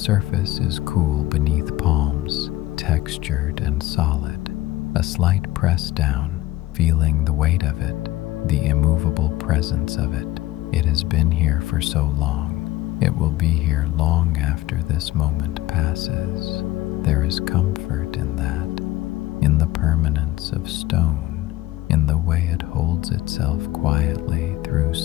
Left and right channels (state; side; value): quieter; right; 16.6 dB